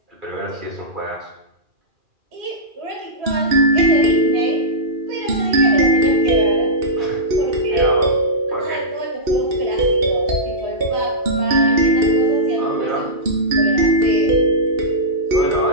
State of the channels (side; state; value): left; late; 2.4 ms